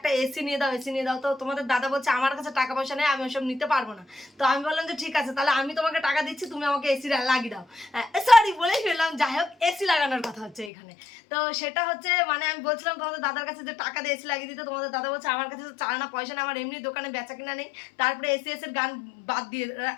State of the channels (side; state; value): right; drops out; at 10.7 s